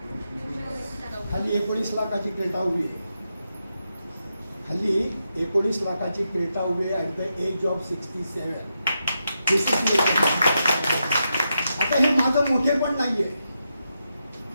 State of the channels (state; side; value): inverted; both; correlation -0.85